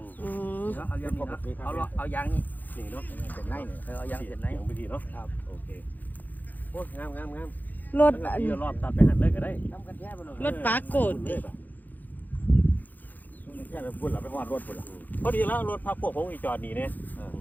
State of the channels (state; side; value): late; right; 0.084 ms